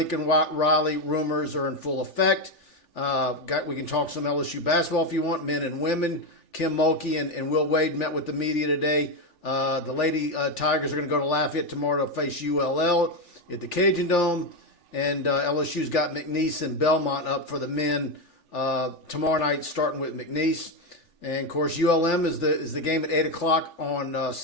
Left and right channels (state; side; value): late; right; 3.4 ms